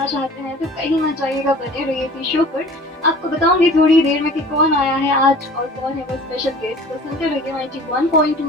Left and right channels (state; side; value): normal; both; correlation 0.45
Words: चाहते हैं तो कहीं मत जाइएगा, बने रहिए इसी शो पर। आपको बताऊंगी थोड़ी देर में कि कौन आया है आज और कौन है वो स्पेशल गेस्ट। तो सुनते रहिए